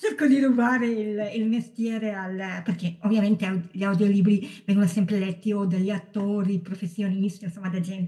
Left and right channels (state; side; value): identical; both; correlation 1.00